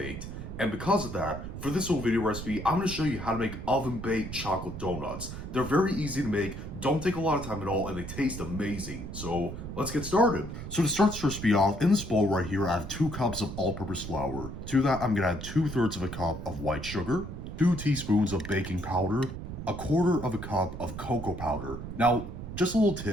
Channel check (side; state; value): right; noise; rumble, 8 dB below the sound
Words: And because of that, for this little video recipe, I'm going to show you how to make oven baked chocolate donuts. They're very easy to make, don't take a lot of time at all, and they taste amazing. So let's get started. So to start this recipe off, in this bowl right here, I have 2 cups of all-purpose flour. To that, I'm going to add 2/3 of a cup of white sugar, 2 teaspoons of baking powder, 1/4 cup of cocoa powder. Now, just a little